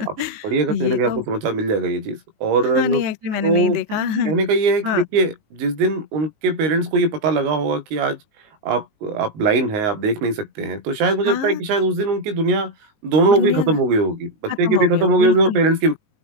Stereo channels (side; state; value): left; late; 19 ms